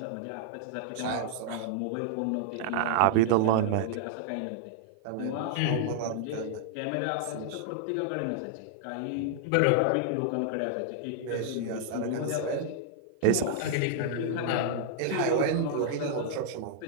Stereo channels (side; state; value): both; different; correlation -0.01